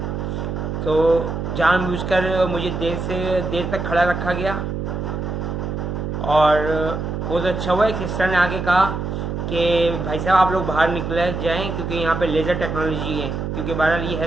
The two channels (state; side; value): noise; right; hum, 3 dB below the sound